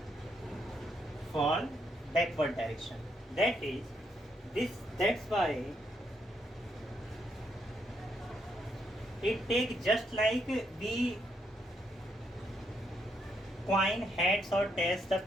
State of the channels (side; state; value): both; normal; correlation 0.76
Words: for backward direction. That is this, that's why it takes just like we coin heads or tails the